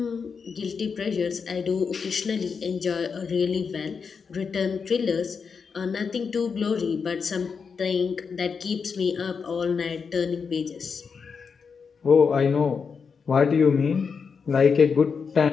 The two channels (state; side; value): quieter; right; 5.7 dB